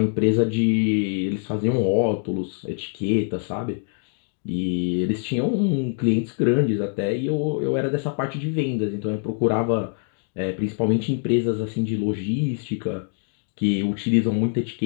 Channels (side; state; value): right; silent; 57 dB below the other